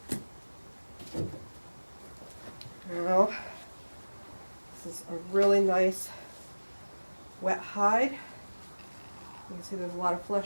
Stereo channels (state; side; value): inverted; both; correlation -1.00